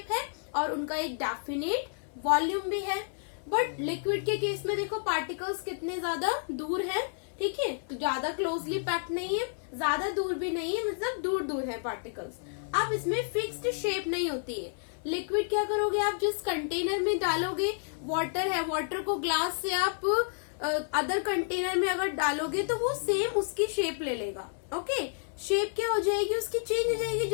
है और उनका एक डेफिनेट वॉल्यूम भी है। बट लिक्विड के केस में देखो पार्टिकल्स कितने ज्यादा दूर है, ठीक है, तो ज्यादा क्लोजली पैक्ड नहीं है, ज्यादा दूर भी नहीं है, मतलब दूर दूर है पार्टिकल्स। अब इसमें फिक्स्ड शेप नहीं होती है। लिक्विड क्या करोगे आप, जिस कंटेनर में डालोगे, वाटर है, वाटर को ग्लास से आप अदर कंटेनर में अगर डालोगे तो वो सेम उसकी शेप ले लेगा। ओके, शेप क्या हो जाएगी उसकी, चेंज हो जाएगी।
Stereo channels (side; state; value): right; silent; 58 dB below the other